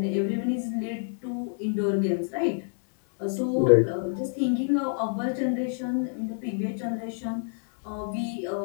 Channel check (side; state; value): right; silent; digital silence